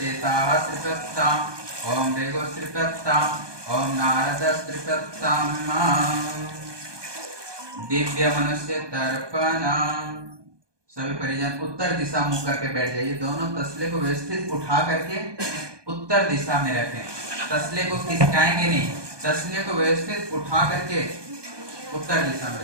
त्रिपत्ताम, ओम भृगुः त्रिपत्ताम, ओम नारदः त्रिपत्ताम। दिव्य मनुष्य तर्पण। सभी परिजन उत्तर दिशा मुख करके बैठ जाइए। दोनों तसले को व्यवस्थित उठा करके उत्तर दिशा में रखें। तसले को खिसकाएंगे नहीं, तसले को व्यवस्थित उठा करके उत्तर दिशा में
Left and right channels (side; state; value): left; late; 1.2 ms